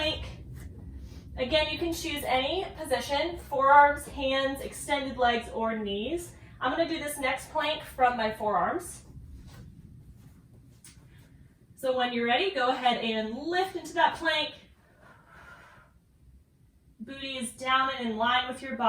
Again, you can choose any position, forearms, hands, extended legs, or knees. I'm going to do this next plank from my forearms. So when you're ready, go ahead and lift into that plank. Booty is down and in line with your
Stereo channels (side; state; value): both; identical; correlation 1.00